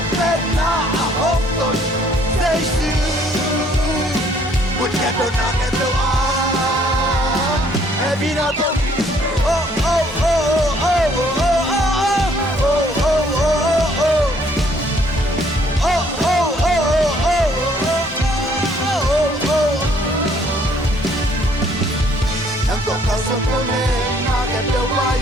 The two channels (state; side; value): normal; both; correlation 0.63